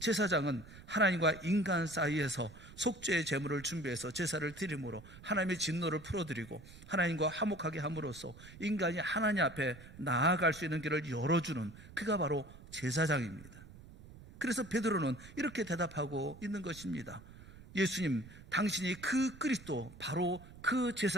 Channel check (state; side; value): noise; right; rumble, 18 dB below the sound